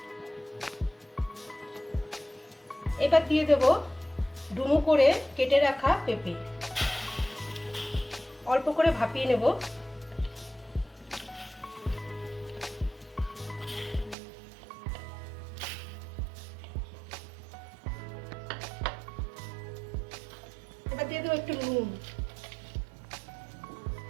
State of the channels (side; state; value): left; drops out; at 14.2 s